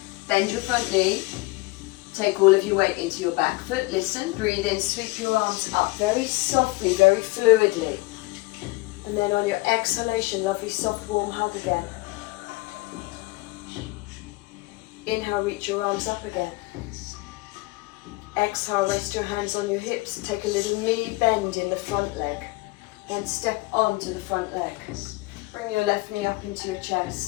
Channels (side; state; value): right; quieter; 22.1 dB